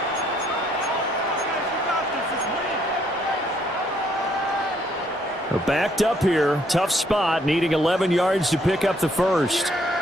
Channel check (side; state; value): both; normal; correlation 0.68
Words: Backed up here, tough spot, needing 11 yards to pick up the first.